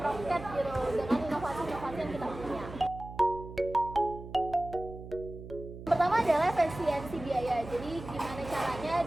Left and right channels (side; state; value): right; noise; hum, 13 dB below the sound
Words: gitu dengan inovasi-inovasi yang kita punya. Pertama adalah efisiensi biaya. Jadi gimana caranya